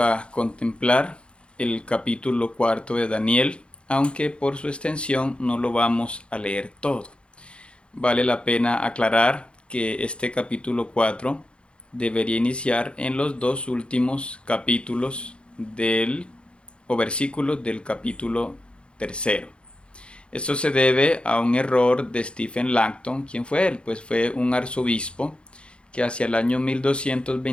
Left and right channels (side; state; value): right; late; 0.056 ms